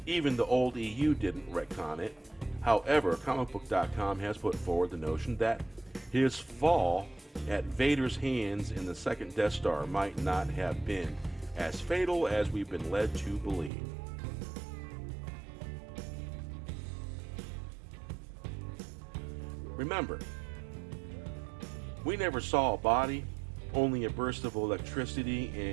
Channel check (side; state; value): left; drops out; at 13.7 s